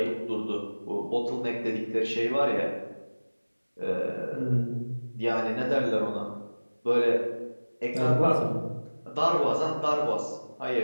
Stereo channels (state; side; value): inverted; both; correlation -1.00